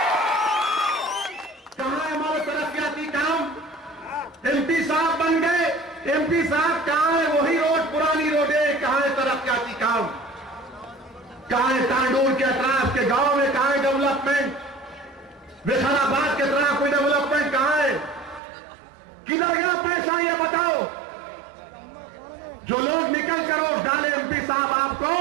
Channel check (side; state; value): left; drops out; at 18.4 s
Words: कहां है हमारे तरक्याती काम? एमपी साहब बन गए, एमपी साहब कहां है? वही रोड, पुरानी रोडे, कहां है तरक्याती काम? कहां है तांडूर के अतराफ के गांव में, कहां है डेवलपमेंट? विशालाबाद के तरफ कोई डेवलपमेंट कहां है? किधर गया पैसा, ये बताओ। जो लोग निकल कर वोट डाले एमपी साहब आपको,